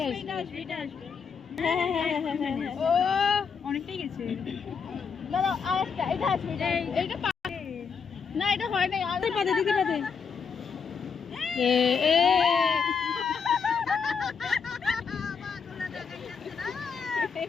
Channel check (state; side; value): quieter; right; 6.0 dB